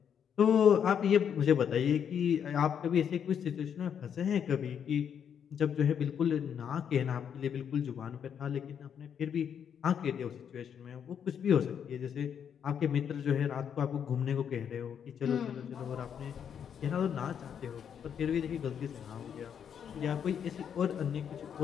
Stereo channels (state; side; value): quieter; right; 8.1 dB